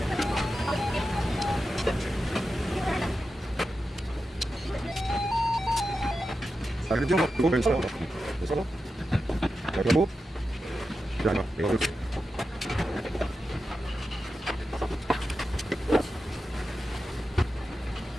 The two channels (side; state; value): both; normal; correlation 0.90